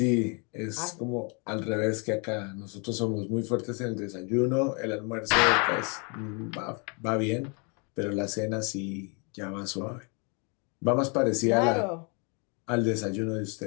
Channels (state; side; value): quieter; right; 34.4 dB